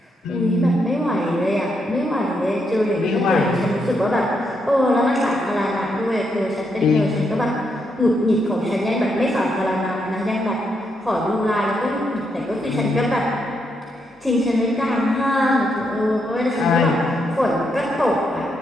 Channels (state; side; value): normal; both; correlation 0.79